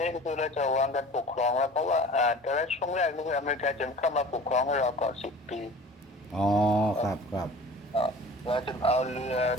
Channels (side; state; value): both; normal; correlation 0.42